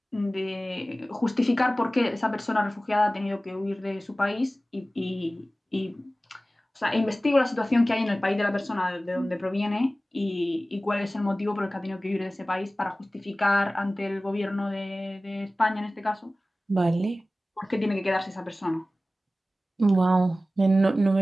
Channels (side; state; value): both; normal; correlation 0.96